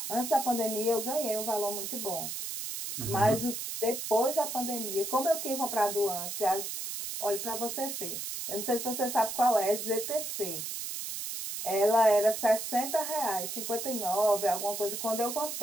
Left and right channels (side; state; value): right; noise; hiss, 5 dB below the sound